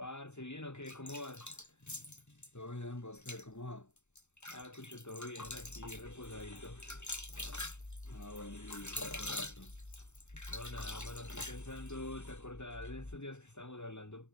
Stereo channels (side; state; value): right; late; 0.83 ms